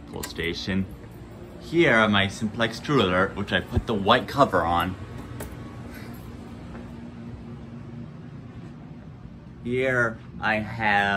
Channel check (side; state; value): both; identical; correlation 1.00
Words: pull station. Here are my simplex true alert, which I put the white cover on. Here I